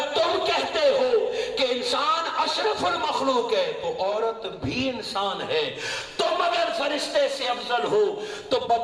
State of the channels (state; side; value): identical; both; correlation 1.00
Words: تم کہتے ہو کہ انسان اشرف المخلوق ہے تو عورت بھی انسان ہے. تم اگر فرشتے سے افضل ہو تو